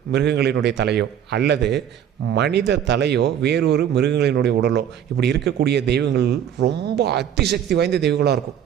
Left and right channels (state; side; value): quieter; left; 9.4 dB